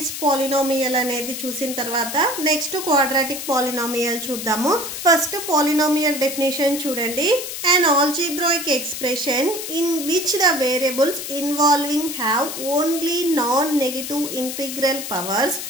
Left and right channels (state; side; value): noise; left; hiss, 7 dB below the sound